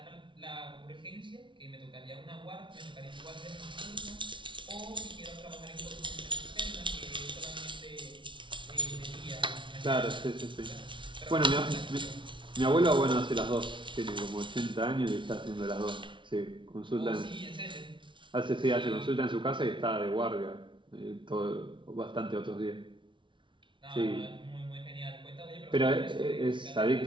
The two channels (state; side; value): late; left; 0.24 ms